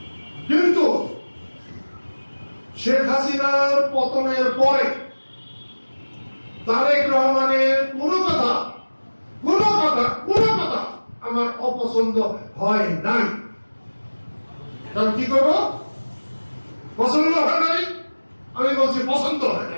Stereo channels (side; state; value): both; inverted; correlation -1.00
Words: কিন্তু শেখ হাসিনার পতনের পরে তারেক রহমানের কোনো কথা আমার অপছন্দ হয় নাই। কারণ কি করবো? পছন্দ হয় নাই, আমি বলছি পছন্দ হয়